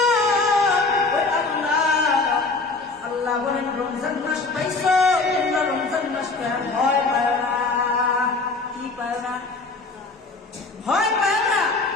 ওই আল্লাহ বলেন, রমজান মাস পাইছো, তোমরা রমজান মাস ভয় পায় না। কি পায় না? ভয় পায় না।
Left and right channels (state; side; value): quieter; right; 3.8 dB